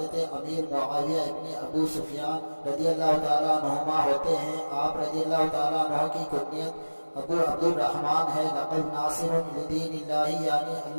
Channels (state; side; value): inverted; both; correlation -1.00